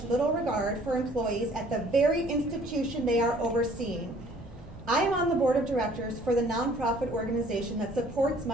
little regard for employees at the very institution they are overseeing. I am on the board of directors for the nonprofit organization that supports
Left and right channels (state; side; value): normal; both; correlation 0.56